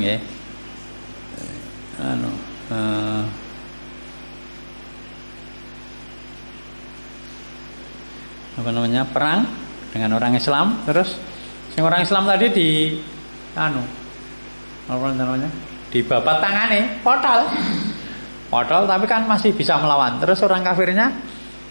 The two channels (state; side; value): inverted; both; correlation -1.00